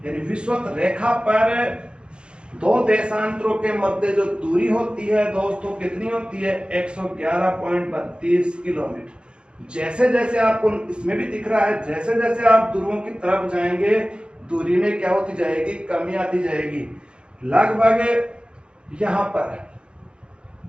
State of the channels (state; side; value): late; left; 0.054 ms